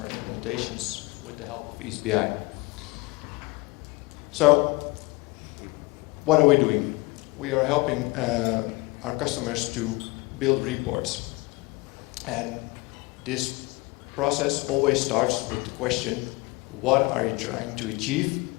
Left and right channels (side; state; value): right; quieter; 24.0 dB